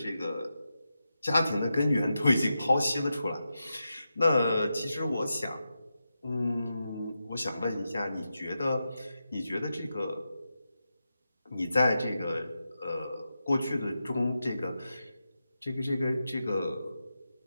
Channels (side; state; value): both; inverted; correlation -0.89